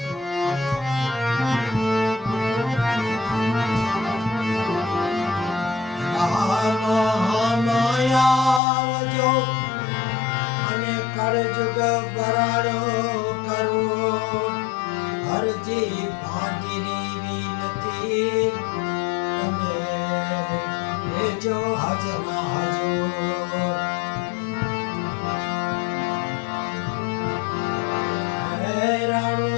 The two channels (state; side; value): drops out; right; at 8.6 s